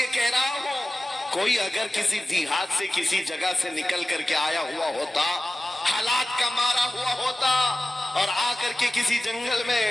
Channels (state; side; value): normal; both; correlation 0.95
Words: کہہ رہا ہوں، کوئی اگر کسی دیہات سے کسی جگہ سے نکل کر کے آیا ہوا ہوتا، حالات کا مارا ہوا ہوتا اور آ کر کے کسی جنگل میں